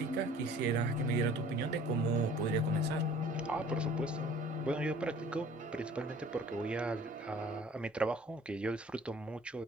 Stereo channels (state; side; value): normal; both; correlation 0.50